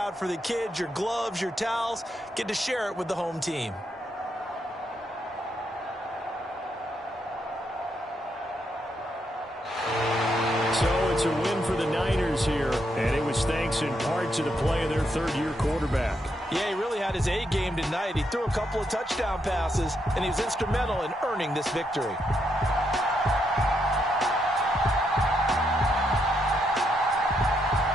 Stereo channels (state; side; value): normal; both; correlation 0.79